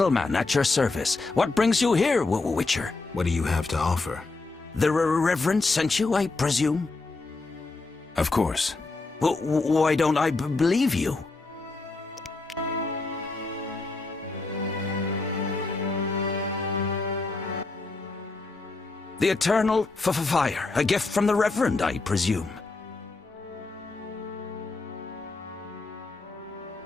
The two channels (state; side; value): quieter; right; 3.5 dB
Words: at your service. What brings you here, Witcher? What do you have to offer? The Reverend sent you, I presume? Of course. Why don't I believe you? The Eternal Fire, a gift from the Reverend, I presume.